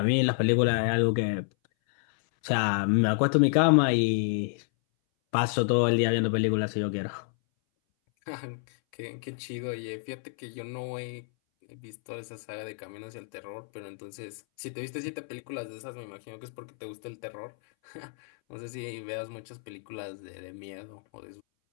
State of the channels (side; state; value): right; silent; 58 dB below the other